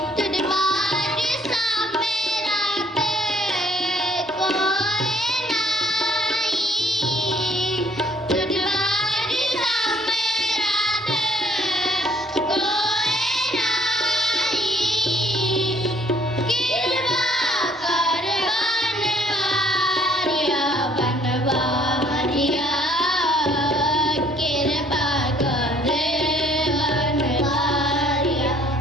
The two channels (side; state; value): both; normal; correlation 0.62